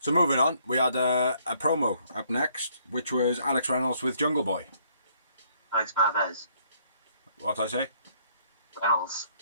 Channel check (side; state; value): both; inverted; correlation -0.67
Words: moving on, we had a promo up next, which was Alex Reynolds with Jungle Boy. Alex Marvez. What did I say? Reynolds.